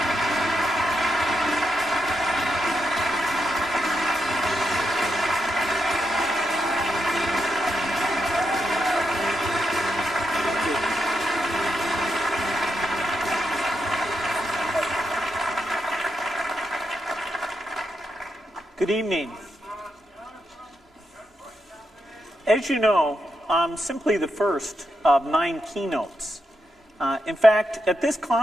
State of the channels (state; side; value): normal; both; correlation 0.83